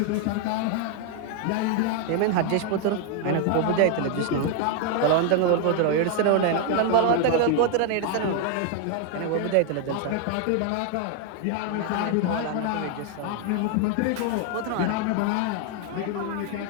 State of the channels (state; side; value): different; both; correlation 0.00